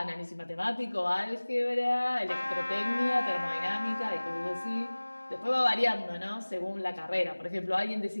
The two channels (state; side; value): inverted; both; correlation -1.00